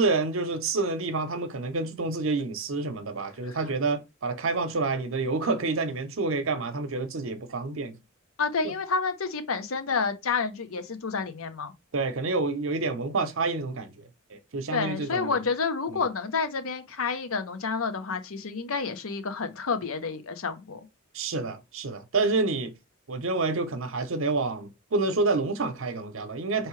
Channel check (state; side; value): normal; both; correlation -0.13